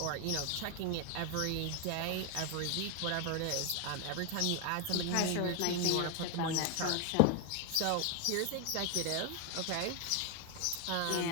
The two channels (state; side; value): different; both; correlation 0.01